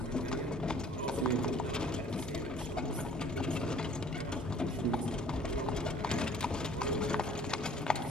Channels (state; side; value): normal; both; correlation 0.54